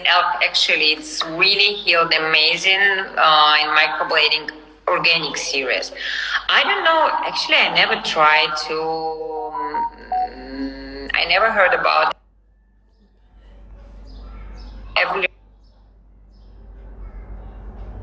actually, it's really healed amazing in microblading organic series. I don't know, actually, I never tried to, I never heard about every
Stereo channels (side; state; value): both; identical; correlation 1.00